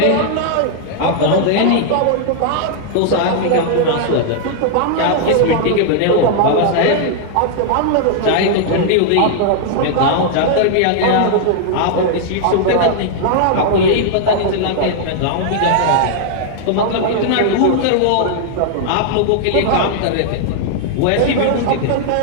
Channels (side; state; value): both; different; correlation -0.01